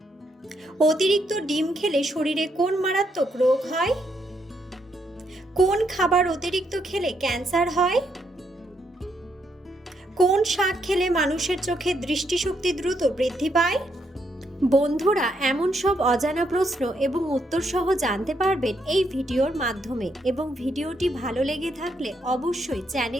অতিরিক্ত ডিম খেলে শরীরে কোন মারাত্মক রোগ হয়? কোন খাবার অতিরিক্ত খেলে ক্যান্সার হয়? কোন শাক খেলে মানুষের চোখে দৃষ্টিশক্তি দ্রুত বৃদ্ধি পায়? বন্ধুরা, এমন সব অজানা প্রশ্ন এবং উত্তর সহ জানতে পারবেন এই ভিডিওর মাধ্যমে, এবং ভিডিওটি ভালো লেগে থাকলে অবশ্যই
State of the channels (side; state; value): both; normal; correlation 0.76